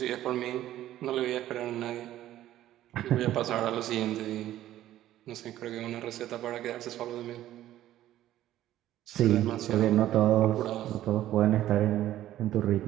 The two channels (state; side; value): quieter; left; 13.3 dB